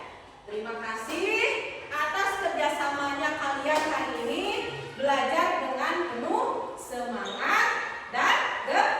Terima kasih atas kerjasamanya kalian hari ini, belajar dengan penuh semangat dan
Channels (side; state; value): both; identical; correlation 1.00